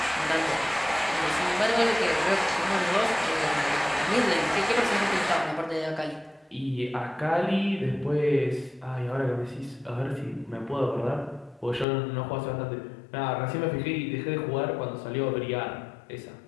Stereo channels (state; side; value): drops out; right; at 11.9 s